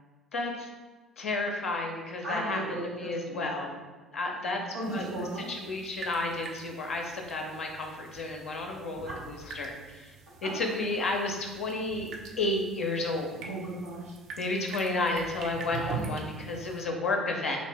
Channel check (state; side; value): normal; both; correlation 0.45